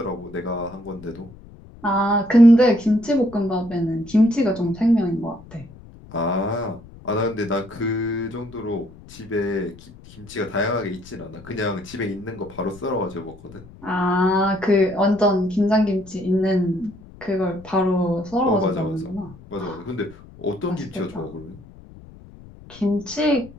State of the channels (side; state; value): left; noise; rumble, 20 dB below the sound